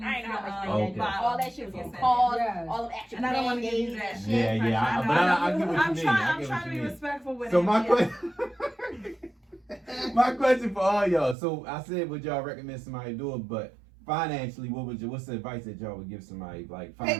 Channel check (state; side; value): drops out; left; at 11.4 s